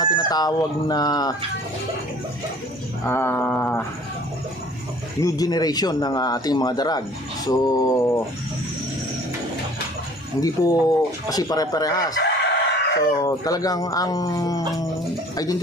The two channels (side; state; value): both; normal; correlation 0.51